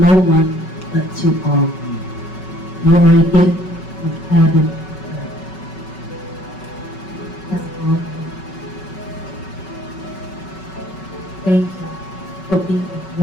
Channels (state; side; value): late; right; 5.3 ms